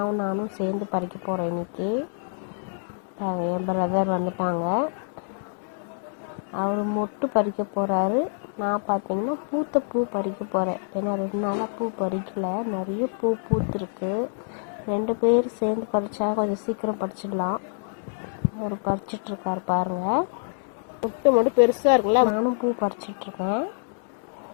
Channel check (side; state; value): right; silent; digital silence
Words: நானும் சேர்ந்து பறிக்க போகிறோம் இன்றைக்கி. பாருங்கள், என் பிரதர் வந்துட்டாங்க. அவர் மொட்டு பறிக்க போகிறாரு. நான் பார்த்தீங்கன்னா பூத்த பூ பறிக்க போகிறேன். ஏன்னா 2 நாளாக பூ பறிக்கலை, நிறைய பூ பூத்துருக்கு. 2 பேர் சேர்ந்து பறித்தா கொஞ்சம் சீக்கிரம் பறிச்சிடலாம். அவர் பறிச்சிட்ருக்கார் பாருங்கள். மொட்டு மட்டும் பெருசாக இருக்குல்ல. நானும் பூ பறிச்சிட்ருக்கேன்.